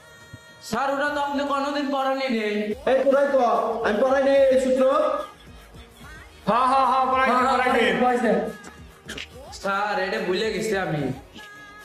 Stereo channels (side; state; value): both; identical; correlation 1.00